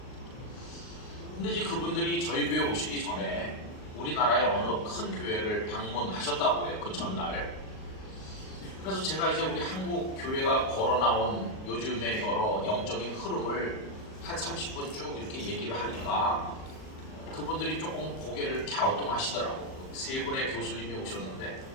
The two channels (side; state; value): right; late; 38 ms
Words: 근데 이제 그분들이 저희 교회 오시기 전에 우리나라의 어느 큰 교회를 방문하셨다고 해요. 그 전날. 그래서 제가 이제 우리 한국 교회가 걸어나온 요즘의 여러 영적인 흐름을 한 30분 쭉 이렇게 얘기를 하니까 그분들이 조금 고개를 갸우뚱하시더라고요. 세 분의 교수님이 오셨는데